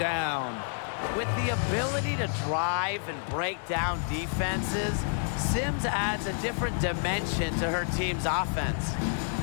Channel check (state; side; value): silent; right; 58 dB below the other